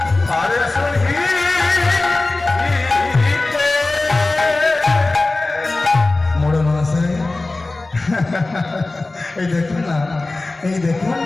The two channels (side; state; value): right; quieter; 3.2 dB